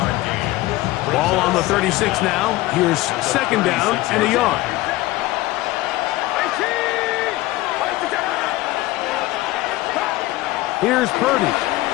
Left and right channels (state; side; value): quieter; right; 18.2 dB